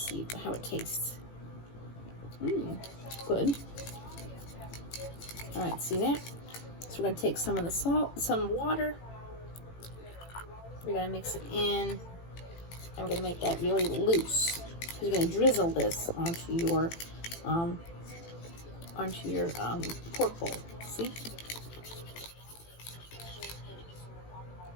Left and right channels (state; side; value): late; right; 18 ms